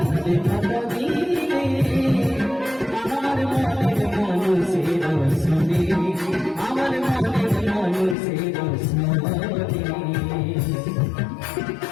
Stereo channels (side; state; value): right; drops out; at 8.2 s